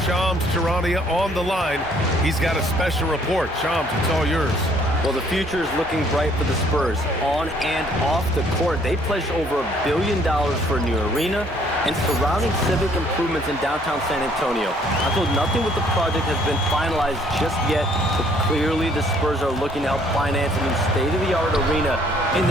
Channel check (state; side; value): normal; both; correlation 0.62